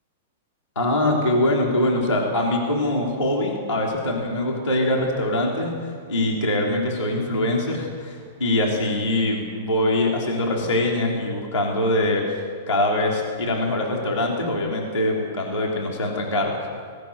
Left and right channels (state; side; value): inverted; both; correlation -0.38